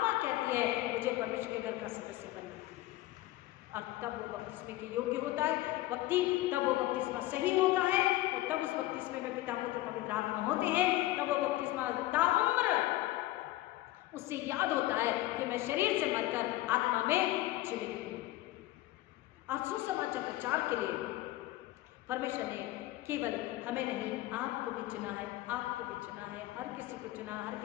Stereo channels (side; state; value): right; quieter; 16.8 dB